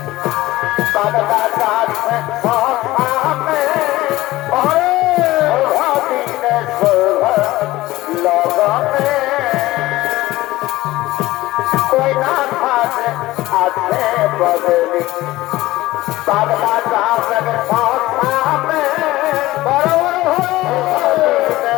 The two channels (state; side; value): quieter; right; 17.6 dB